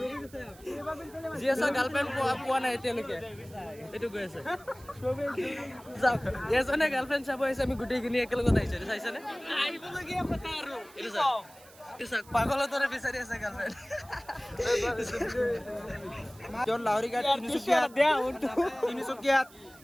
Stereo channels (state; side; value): noise; right; hiss, 23 dB below the sound